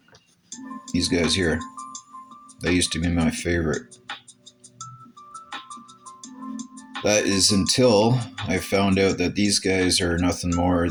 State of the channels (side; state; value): both; identical; correlation 1.00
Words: these guys here. They used to be my favorite. That is until I found out that these guys are nothing more